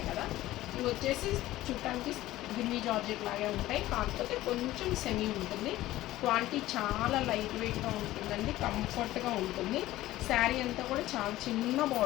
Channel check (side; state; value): right; quieter; 15.8 dB